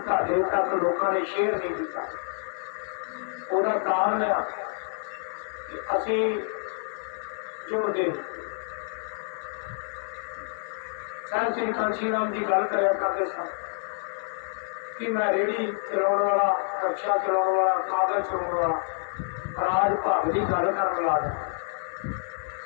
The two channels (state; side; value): silent; right; 60 dB below the other